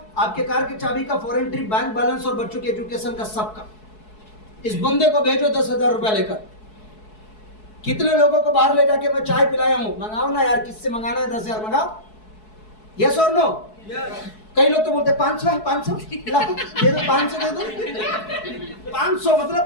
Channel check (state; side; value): late; right; 4.7 ms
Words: आपके कार की चाबी का, फॉरेन ट्रिप, बैंक बैलेंस और बच्चों के एजुकेशन का, सबका। इस बंदे को भेजो 10,000 रुपया लेकर। कितने लोगों को बाहर ले जाके मैं चाय पिलाया हूं? मंगाओ ना यार, किससे मंगाना है? 10,000 मंगाओ। यस और नो? कई लोग तो बोलते 500 है, 500 दे दो, 500 दे दो। 500 मतलब